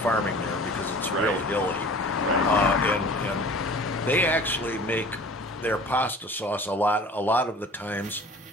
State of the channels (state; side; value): normal; both; correlation 0.44